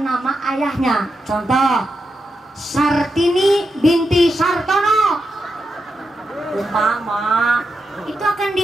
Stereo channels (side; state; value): both; normal; correlation 0.87